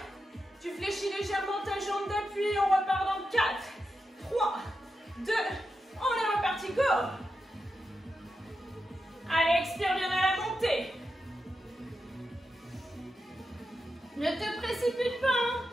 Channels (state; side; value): normal; both; correlation 0.88